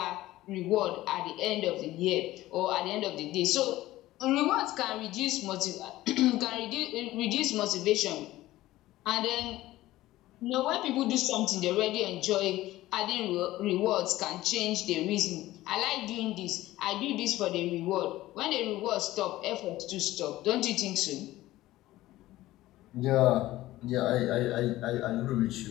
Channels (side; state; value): right; quieter; 16.3 dB